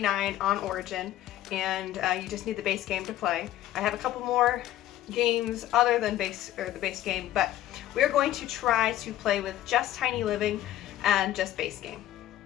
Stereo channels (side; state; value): right; quieter; 13.5 dB